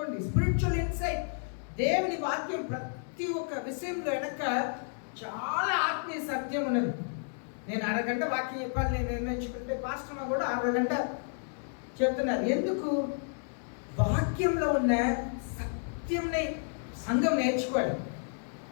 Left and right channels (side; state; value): right; silent; 57 dB below the other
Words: Spiritual insight. దేవుని వాక్యం ప్రతి ఒక్క విషయంలో వెనక చాలా ఆత్మీయ సత్యం ఉన్నది. నేను అరగంట వాక్యం చెప్పాలి నేను నిర్ణయించుకుంటే పాస్టర్ కూడా అరగంట చెప్తున్నారు. ఎందుకు? వాక్యంలో ఉన్న సత్యంని సంఘం నేర్చుకోవాలి.